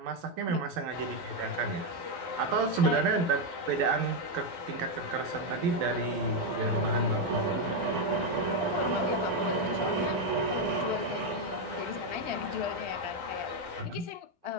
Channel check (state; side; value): late; left; 12 ms